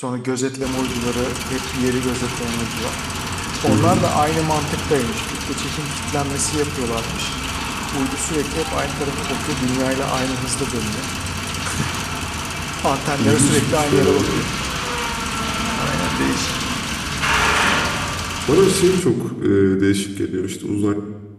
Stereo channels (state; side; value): identical; both; correlation 1.00